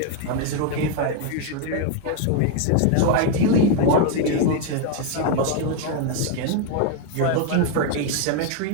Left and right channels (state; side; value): different; both; correlation 0.01